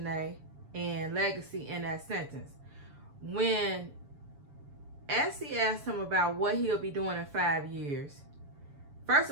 and Legacy in that sentence. When ESSY asked him about what he'll be doing in 5 years, first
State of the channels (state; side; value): late; left; 7.1 ms